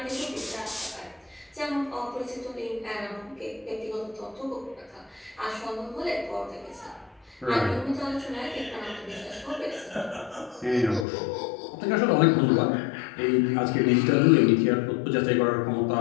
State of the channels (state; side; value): drops out; right; at 11.1 s